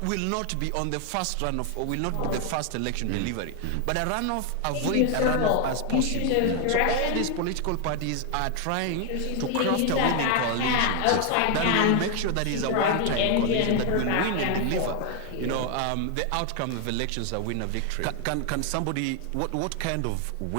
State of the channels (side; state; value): both; different; correlation 0.00